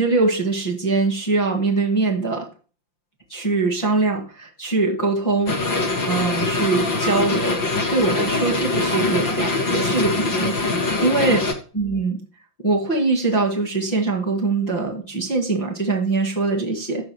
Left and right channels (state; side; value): late; right; 5.8 ms